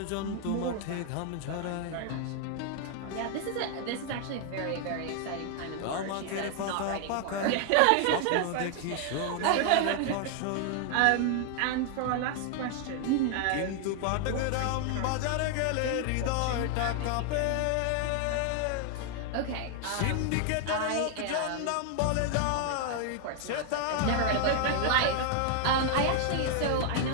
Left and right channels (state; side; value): different; both; correlation 0.00